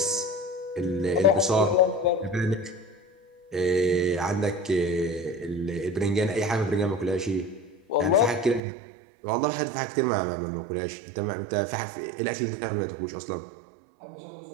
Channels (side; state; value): left; drops out; at 8.6 s